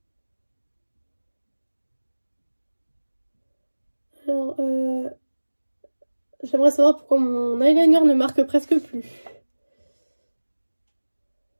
Alors, j'aimerais savoir pourquoi mon eyeliner ne marque presque plus.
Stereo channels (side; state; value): both; inverted; correlation -1.00